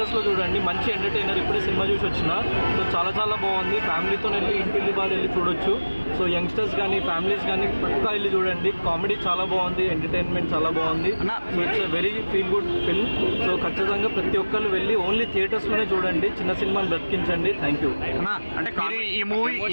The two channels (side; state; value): both; inverted; correlation -1.00